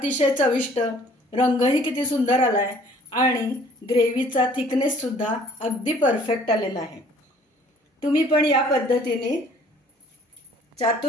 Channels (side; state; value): both; normal; correlation 0.56